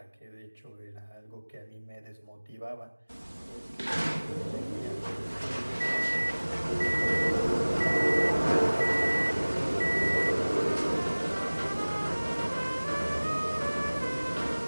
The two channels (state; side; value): inverted; both; correlation -1.00